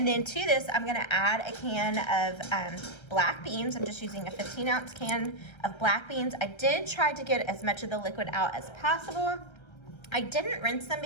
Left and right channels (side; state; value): right; late; 1.3 ms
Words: then to this, I'm gonna add a can of black beans. I'm just using a 15-ounce can of black beans. I did try to get as much of the liquid out as possible. I didn't rinse them